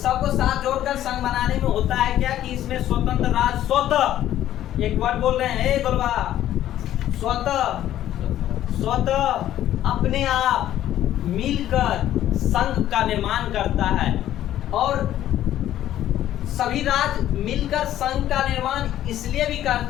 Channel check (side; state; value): right; quieter; 12.4 dB